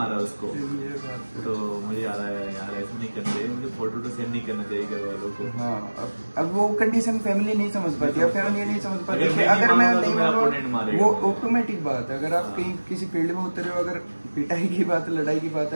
उसको। तो मुझे याद आया यार ऐसा नहीं करना चाहिए, मुझे फोटो तो सेंड नहीं करना चाहिए घर वालों को। हाँ, अब वो कंडीशन फैमिली नहीं समझ पाती, अब फैमिली नहीं समझ पाती, अगर मैं नहीं, वो ऑटोमेटिक बात है, अगर आप कहीं किसी फील्ड में उतरे हो, अगर पिटाई की बात है, लड़ाई की बात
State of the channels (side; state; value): both; inverted; correlation -1.00